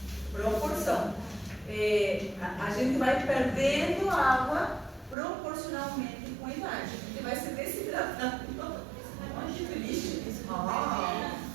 Proporção. A gente vai perdendo água proporcionalmente com a idade. A gente vai se desidratando. Que triste isso.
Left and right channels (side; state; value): left; drops out; at 5.2 s